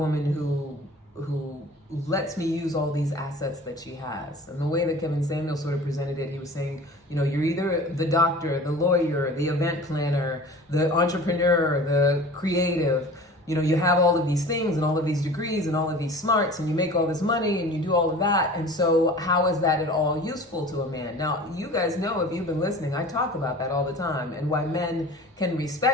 who lets me use all these assets that she has. And the way that Kevin Samuels sort of presented it, he was saying, you know, you're either the doctor, the lawyer, the event planner, the entrepreneur, the creative. You know, you have all of these things and all of these degrees and all of these smarts and you make all this money and you do all of that. And so how is that at all useful to a man? Now, you guys know, if you've been listening, I talk about that all the time and why men can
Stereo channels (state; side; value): normal; both; correlation 0.41